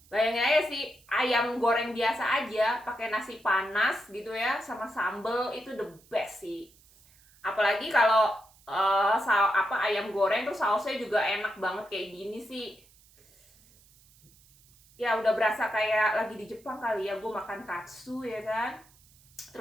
Bayangin aja sih, ayam goreng biasa aja pakai nasi panas gitu ya sama sambel, itu the best sih. Apalagi kalau ayam goreng terus sausnya juga enak banget kayak gini sih. Ya udah berasa kayak lagi di Jepang kali ya, gue makan katsu ya kan.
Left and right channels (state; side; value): noise; right; hiss, 28 dB below the sound